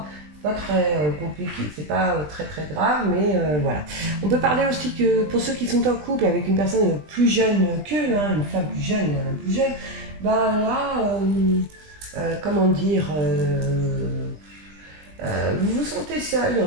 pas très compliqué, c'est pas très très grave, mais voilà. On peut parler aussi que pour ceux qui sont en couple avec une personne plus jeune qu'eux, hein, une femme plus jeune, un homme plus jeune, bah là, comment dire, vous vous sentez seul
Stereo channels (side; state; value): left; late; 20 ms